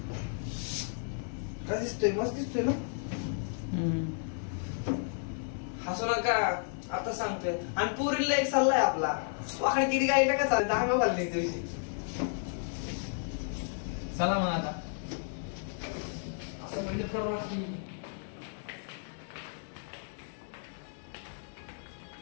का दिसतोय, मस्त दिसतोय ना. हसू नका आता सांगतोय. आणि पुरीला एक सल्ला आहे आपला, वाकडे तिडी गाडी नका चालत. दहा घालली दिवशी. चला मग आता असं म्हणजे करू लागली.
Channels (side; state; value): right; silent; digital silence